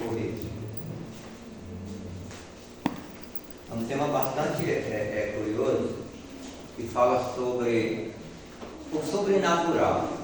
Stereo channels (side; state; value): both; identical; correlation 1.00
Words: um tema bastante curioso, que fala sobre o sobrenatural.